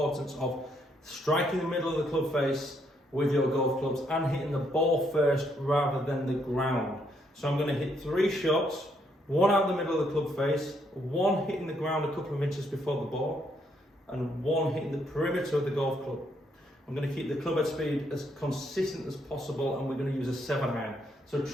of striking the middle of the club face with your golf clubs and hitting the ball first rather than the ground. So I'm going to hit 3 shots, one out the middle of the club face, one hitting the ground a couple of inches before the ball, and one hitting the perimeter of the golf club. I'm going to keep the club head speed as consistent as possible, and we're going to use a 7-iron. So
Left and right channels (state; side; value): normal; both; correlation 0.73